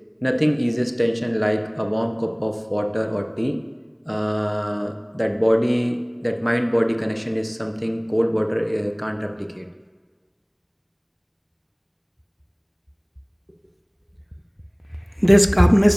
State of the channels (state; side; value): identical; both; correlation 1.00